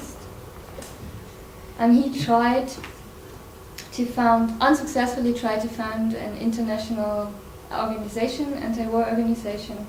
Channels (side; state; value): both; identical; correlation 1.00